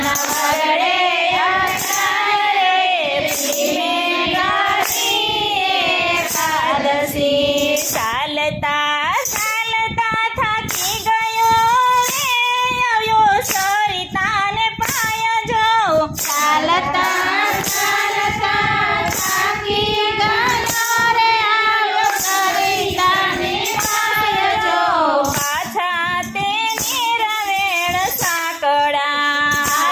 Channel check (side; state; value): both; identical; correlation 1.00